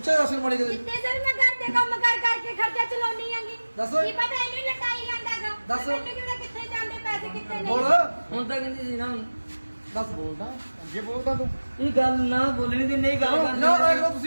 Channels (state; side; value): inverted; both; correlation -1.00